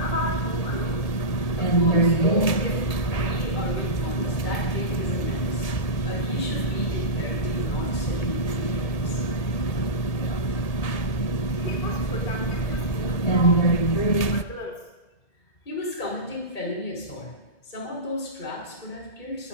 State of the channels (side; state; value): right; late; 1.8 ms